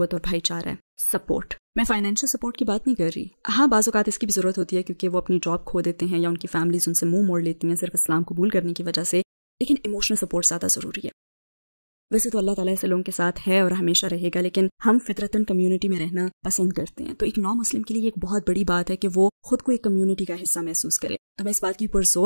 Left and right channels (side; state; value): both; inverted; correlation -1.00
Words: اور بھائی چارہ ہے، سپورٹ۔ میں فائنینشیل سپورٹ کی بات نہیں کر رہی، ہاں بعض اوقات اس کی بھی ضرورت ہوتی ہے کیونکہ وہ اپنی جاب کھو دیتے ہیں یا ان کی فیملیز ان سے منہ موڑ لیتی ہیں صرف اسلام قبول کرنے کی وجہ سے، لیکن ایموشنل سپورٹ زیادہ ضروری ہے۔ ویسے تو اللہ تعالیٰ ایسے لوگوں کے ساتھ ہے اور ہمیشہ رہے گا، لیکن ہم فطرتاً کمیونٹی میں رہنا پسند کرتے ہیں۔ تو ایک نو مسلم کے لیے ایک بہت بڑی بات ہے کہ وہ خود کو ایک کمیونٹی کا حصہ محسوس کرے۔ تو میں اس بات کی